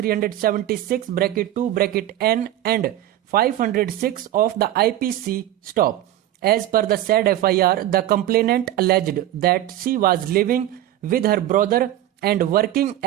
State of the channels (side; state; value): left; quieter; 13.3 dB